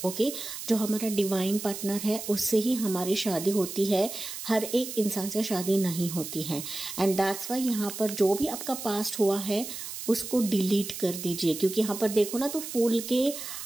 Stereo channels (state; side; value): noise; right; hiss, 8 dB below the sound